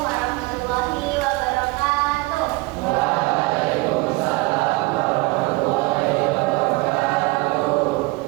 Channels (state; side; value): quieter; left; 23.5 dB